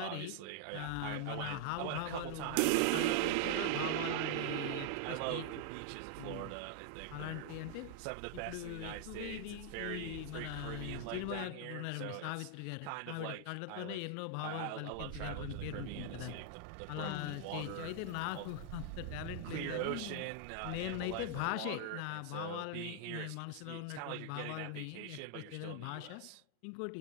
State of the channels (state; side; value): different; both; correlation 0.00